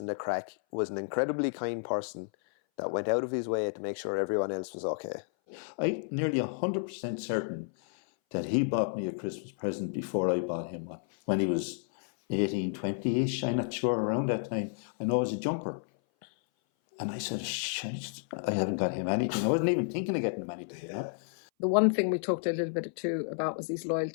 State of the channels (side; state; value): right; silent; 57 dB below the other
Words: the crack was an incredibly kind person that went out of his way to make sure everyone else was okay. I'm nearly 100% certain that he bought me a Christmas present before I bought him one. When he was 18, 20-ish, I'm not sure, around that time. I know it was a jumper. And I said, shit, I haven't got him anything. I wasn't even thinking of getting him anything, you know. The one thing we talked a little bit too about was his